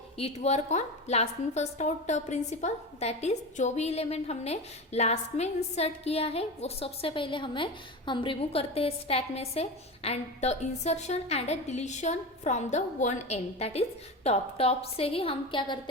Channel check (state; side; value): normal; both; correlation 0.24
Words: it work on last in first out principle. That is जो भी एलिमेंट हमने लास्ट में इंसर्ट किया है वो सबसे पहले हम रिमूव करते हैं स्टैक में से. And the insertion and the deletion from the one and, that is top से ही हम क्या